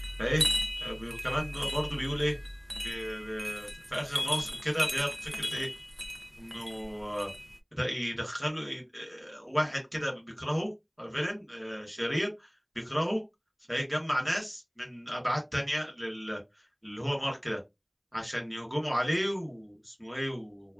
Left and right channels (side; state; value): both; identical; correlation 1.00